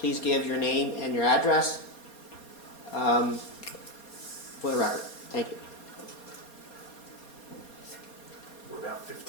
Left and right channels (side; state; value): right; late; 4.2 ms